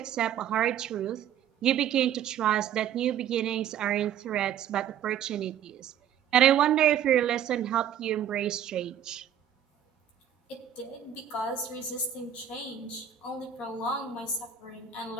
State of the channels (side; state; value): left; quieter; 9.5 dB